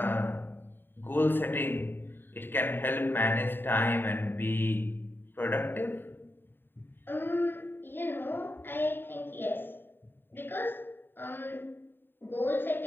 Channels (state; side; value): late; right; 0.097 ms